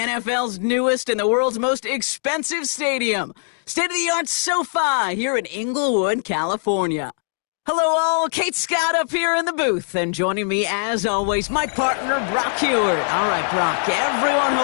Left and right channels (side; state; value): right; silent; digital silence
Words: newest and the world's most expensive stadium, state-of-the-art SoFi here in Inglewood, California. Hello all, Kate Scott up here in the booth, and joining me as always, my partner Brock Heward. All right, Brock, everyone